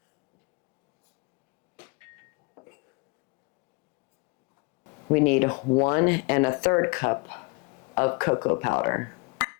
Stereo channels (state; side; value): quieter; right; 29.8 dB